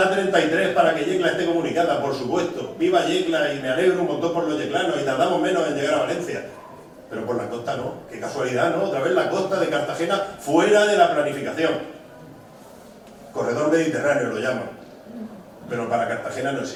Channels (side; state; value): both; identical; correlation 1.00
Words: para que Yecla esté comunicada, por supuesto. Viva Yecla y me alegro un montón por los yeclanos y tardamos menos en llegar a Valencia. Pero por la costa no. Qué casualidad, ¿no? Otra vez la costa de Cartagena fuera de la planificación. Corredor Mediterráneo lo llaman. Pero para Cartagena no